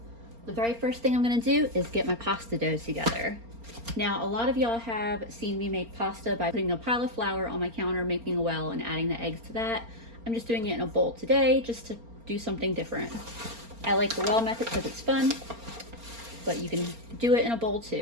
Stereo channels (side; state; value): left; late; 4.3 ms